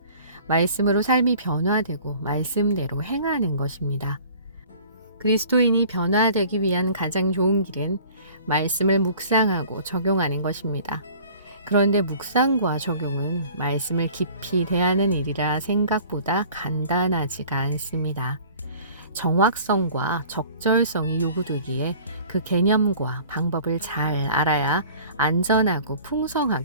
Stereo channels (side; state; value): both; inverted; correlation -0.48